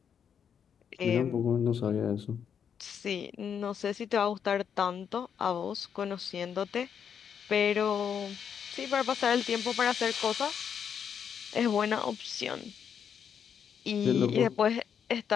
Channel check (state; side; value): quieter; right; 7.7 dB